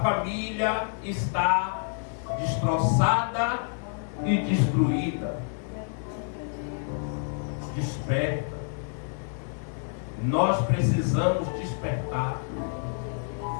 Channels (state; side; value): silent; right; 59 dB below the other